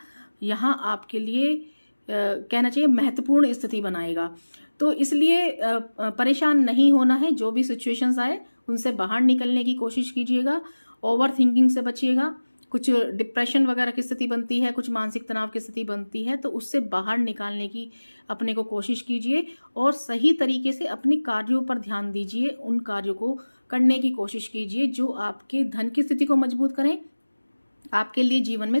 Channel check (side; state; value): both; inverted; correlation -1.00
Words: यहाँ आपके लिए कहना चाहिए महत्वपूर्ण स्थिति बनाएगा। तो इसलिए परेशान नहीं होना है, जो भी सिचुएशंस आए उनसे बाहर निकलने की कोशिश कीजिएगा। ओवर थिंकिंग से बचिएगा। कुछ डिप्रेशन वगैरह की स्थिति बनती है, कुछ मानसिक तनाव की स्थिति बनती है, तो उससे बाहर निकालने की अपने को कोशिश कीजिए और सही तरीके से अपने कार्यों पर ध्यान दीजिए। उन कार्यों को करने की कोशिश कीजिए जो आपके धन की स्थिति को मजबूत करें, आपके लिए जीवन में